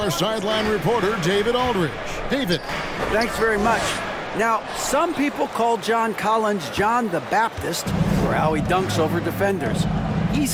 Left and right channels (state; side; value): identical; both; correlation 1.00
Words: sideline reporter, David Aldridge. David. Thanks very much. Now, some people call John Collins John the Baptist for how he dunks over defenders. He